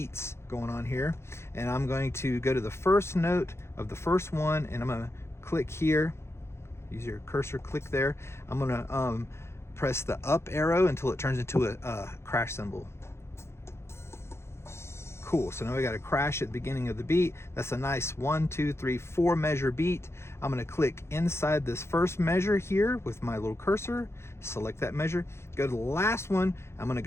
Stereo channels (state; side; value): late; right; 0.13 ms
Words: going on here, and I'm going to go to the first note of the first one, and I'm going to click here. Use your cursor, click there. I'm going to press the up arrow until it turns into a crash cymbal. Cool. So now we got a crash at the beginning of the beat. That's a nice 1, 2, 3, 4 measure beat. I'm going to click inside this first measure here with my little cursor, select that measure, go to the last one. I'm going to